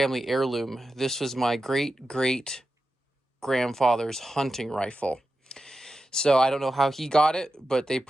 heirloom. This was my great-great-grandfather's hunting rifle. So I don't know how he got it, but they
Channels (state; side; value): normal; both; correlation 0.91